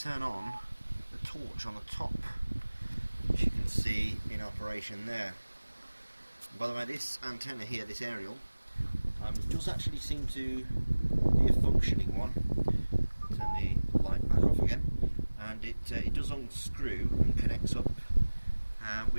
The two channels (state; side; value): inverted; both; correlation -1.00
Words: on the torch on the top, which you can see in operation there. By the way, this antenna here, this aerial, does actually seem to be a functioning one. Turn the light back off again, and it does unscrew and connects up.